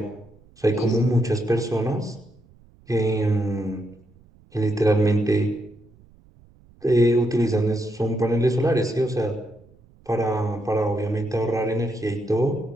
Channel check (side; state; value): right; noise; rumble, 28 dB below the sound